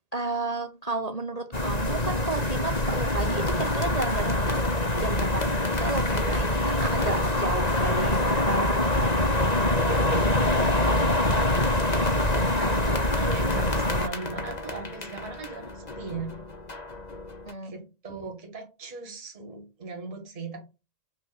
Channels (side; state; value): right; late; 1.9 ms